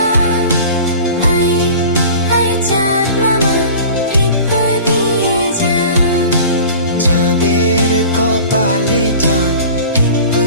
আয় আয় চাঁদ মামা টিপ দিয়ে যা। চাঁদের কপালে চাঁদ টিপ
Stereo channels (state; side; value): inverted; both; correlation -0.41